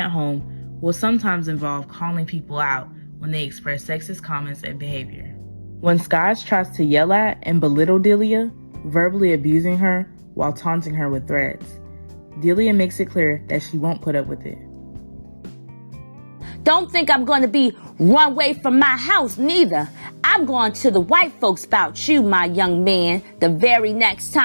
home will sometimes involve calling people out when they express sexist comments and behavior. When Skies tries to yell at and belittle Delia, verbally abusing her while taunting her with threats, Delia makes it clear that she won't put up with it. Don't think I'm going to be run away from my house, neither. I'm going to the white folks about you, my young man. The very next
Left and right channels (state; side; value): inverted; both; correlation -1.00